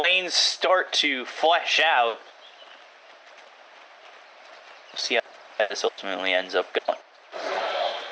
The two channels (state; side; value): identical; both; correlation 1.00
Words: start to flesh out, we'll see how this ultimately ends up going.